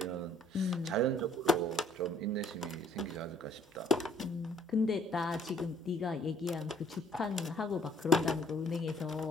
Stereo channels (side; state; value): both; normal; correlation 0.59